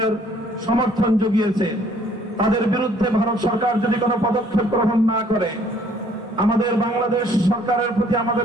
সমর্থন জুগিয়েছে, তাদের বিরুদ্ধে ভারত সরকার যদি কোনো পদক্ষেপ গ্রহণ না করে, আমাদের বাংলাদেশ সরকারের প্রতি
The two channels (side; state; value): both; normal; correlation 0.60